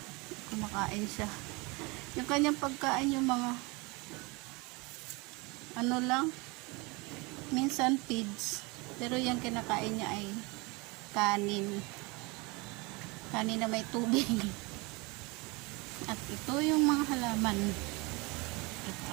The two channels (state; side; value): quieter; left; 26.5 dB